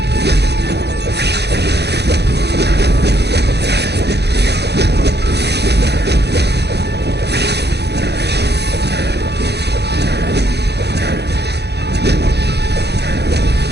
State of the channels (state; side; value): late; left; 0.48 ms